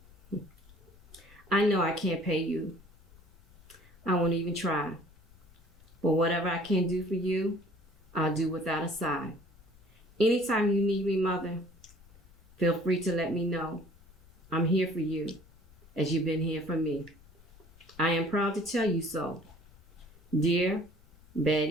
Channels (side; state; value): left; noise; rumble, 26 dB below the sound